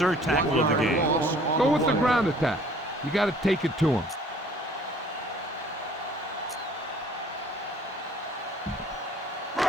tackle of the game. Go with the ground attack. You got to take it to him.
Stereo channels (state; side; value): normal; both; correlation 0.55